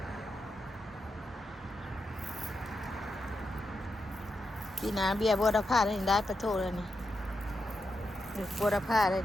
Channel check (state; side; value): normal; both; correlation 0.86